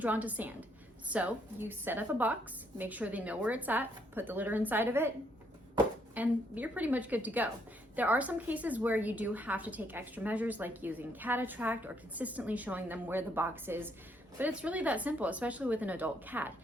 to sand. So you set up a box, make sure they know where it's at, put the litter inside of it, and you're pretty much good to go. There are some cases where you do have to take extra measures, like using cat attract or consistently showing them where the box is, but it's really that simple, especially with an adult cat.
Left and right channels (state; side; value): normal; both; correlation 0.71